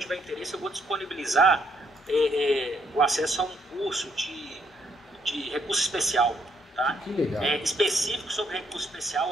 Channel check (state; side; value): normal; both; correlation 0.72